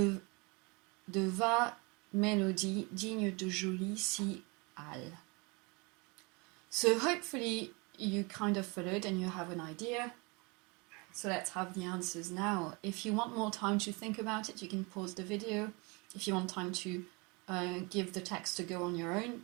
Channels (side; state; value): left; quieter; 28.6 dB